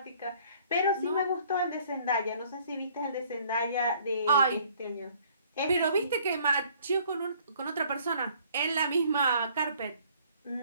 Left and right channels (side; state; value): both; inverted; correlation -0.59